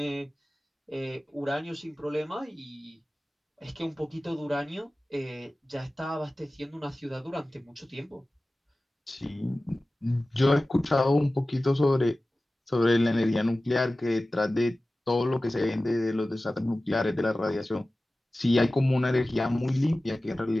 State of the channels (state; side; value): normal; both; correlation 0.97